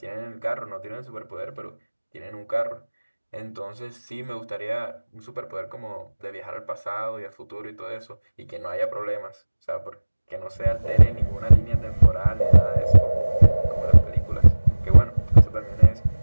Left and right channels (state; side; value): inverted; both; correlation -1.00